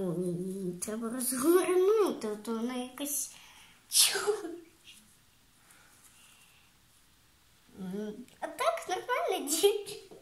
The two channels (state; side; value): identical; both; correlation 1.00